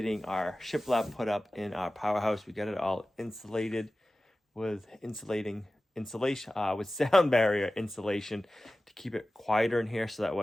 our shiplap put up in our powerhouse. We got it all insulated with insulation with sound barrier insulation to keep it quieter in here, so that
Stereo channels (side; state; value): both; normal; correlation 0.96